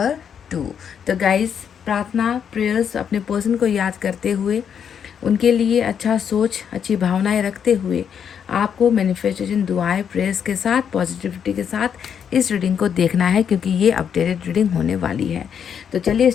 2। तो गाइस, प्रार्थना प्रेयर्स अपने पर्सन को याद करते हुए, उनके लिए अच्छा सोच, अच्छी भावनाएं रखते हुए आपको मैनिफेस्टेशन, दुआएं, प्रेयर्स के साथ, पॉजिटिविटी के साथ इस रीडिंग को देखना है क्योंकि ये अपडेटेड रीडिंग होने वाली है। तो चलिए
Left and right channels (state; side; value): quieter; right; 7.9 dB